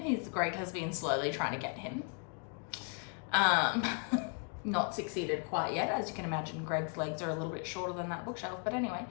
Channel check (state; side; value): quieter; right; 38.8 dB